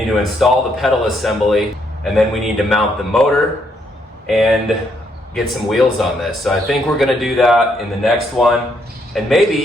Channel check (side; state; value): both; normal; correlation 0.73